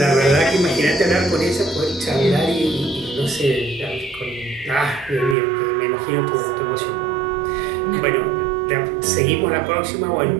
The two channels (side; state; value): left; drops out; at 5.4 s